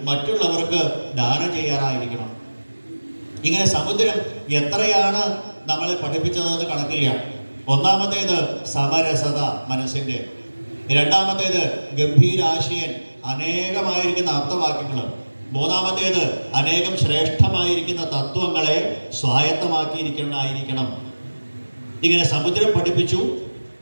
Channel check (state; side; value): inverted; both; correlation -1.00